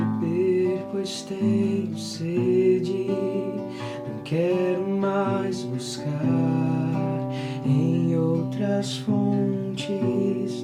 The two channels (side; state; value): both; identical; correlation 1.00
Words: pois tenho sede, não quero mais buscar em outras fontes,